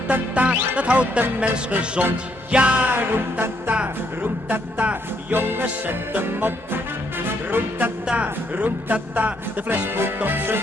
dat houdt de mens gezond. Ja, roem-ta-ta, jongens zet hem op. Roem-ta-ta, de fles moet op zijn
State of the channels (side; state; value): both; normal; correlation 0.72